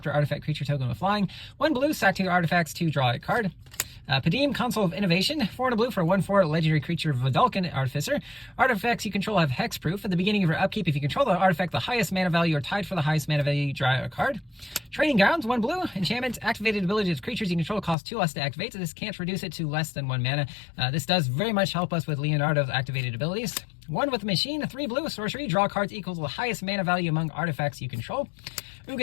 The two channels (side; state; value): right; drops out; at 17.9 s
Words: artifact creature token with flying. 1 blue, sack 2 artifacts to draw a card. Padim, Console of Innovation, 4 and a blue for 1/4 legendary creature Vidalcan Artificer. Artifacts you control have hexproof. At the beginning of your upkeep, if you control the artifact the highest mana value or tied for the highest mana value, you draw a card. Training Grounds, 1 blue, enchantment, activated ability of creatures you control cost 2 less to activate, so this can't reduce it to less than 1 mana. This does very much help us with Leonardo's activated abilities. 1 with Machine, 3 blue, sorcery, draw cards equal to the highest mana value among artifacts you control.